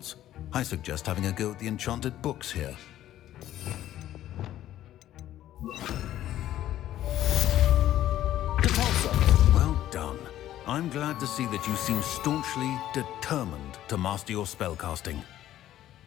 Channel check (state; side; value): quieter; right; 12.9 dB